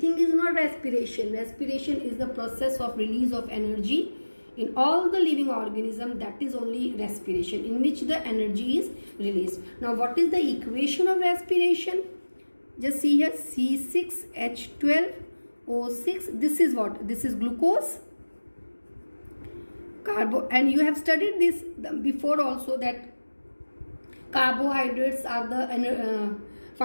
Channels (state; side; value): inverted; both; correlation -1.00